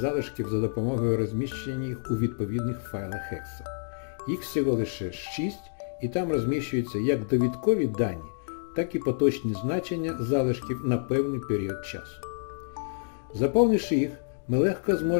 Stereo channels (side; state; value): right; silent; digital silence